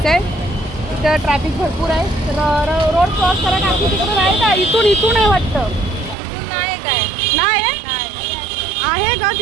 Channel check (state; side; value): drops out; left; at 6.2 s